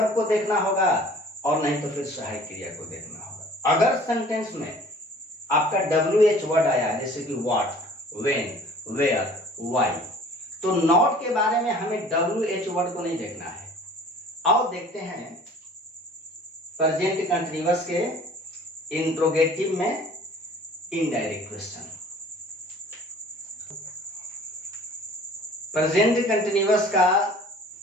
को देखना होगा और नहीं तो फिर सहायक क्रिया को देखना होगा। अगर सेंटेंस में आपका WH वर्ड आया जैसे कि व्हाट, व्हेन, वेयर, व्हाई, तो नॉट के बारे में हमें WH वर्ड को नहीं देखना है। आओ देखते हैं प्रेजेंट कंटीन्यूअस के इंट्रोगेटिव में इनडायरेक्ट क्वेश्चन। प्रेजेंट कंटीन्यूअस का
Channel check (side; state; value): both; normal; correlation 0.49